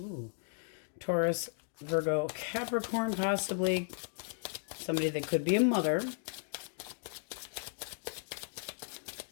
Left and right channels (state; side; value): silent; right; digital silence